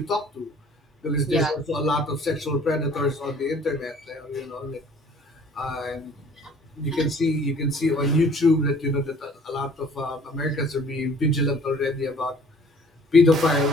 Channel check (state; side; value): normal; both; correlation 0.53